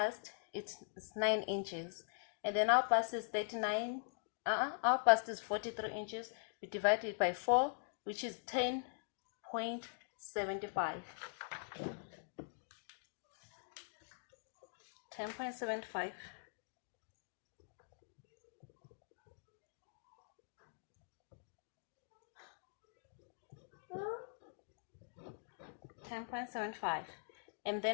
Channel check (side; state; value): right; silent; digital silence